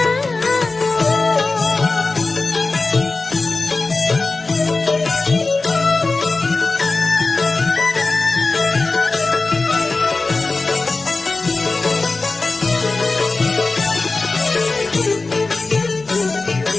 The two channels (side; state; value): right; quieter; 3.6 dB